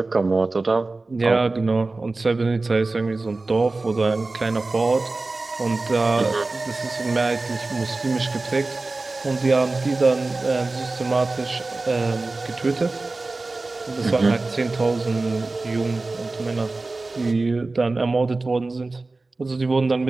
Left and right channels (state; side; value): quieter; left; 3.4 dB